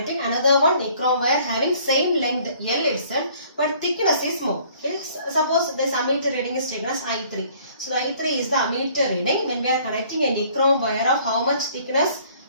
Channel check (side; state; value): both; inverted; correlation -0.57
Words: another one nichrome wire having same length L itself but thickness is more. Okay. Suppose this ammeter reading is taken as I3. So the I3 is the ammeter reading when we are connecting a nichrome wire of how much thickness?